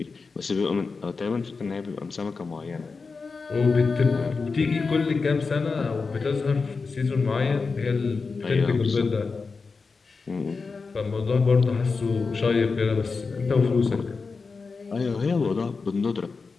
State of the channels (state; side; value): quieter; right; 4.5 dB